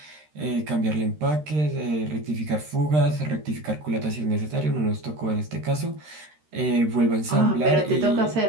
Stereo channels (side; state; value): left; late; 13 ms